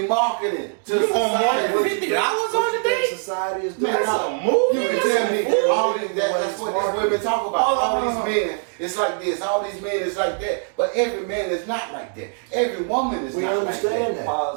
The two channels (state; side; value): silent; left; 60 dB below the other